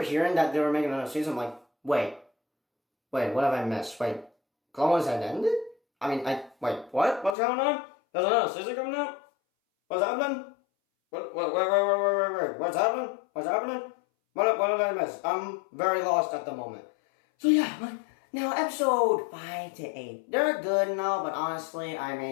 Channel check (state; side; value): drops out; right; at 7.4 s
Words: hearing that they were making another season, I'm like, wait, what have I missed? Wait, Clone Wars had ended? Wait, what? What's going on? There's another season coming out? What's happening? What's happening? What did I miss? I'm very lost at the moment. So yeah, now episode 5 to 8, they're good and all, but honestly,